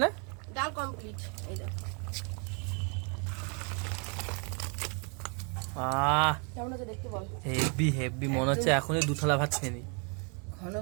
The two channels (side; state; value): left; quieter; 36.6 dB